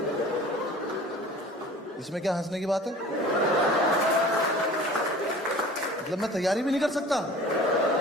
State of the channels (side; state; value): both; normal; correlation 0.44